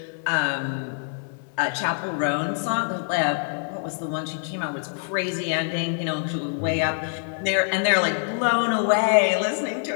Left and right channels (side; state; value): right; silent; digital silence